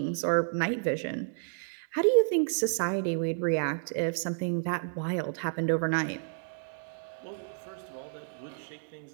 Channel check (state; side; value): silent; left; digital silence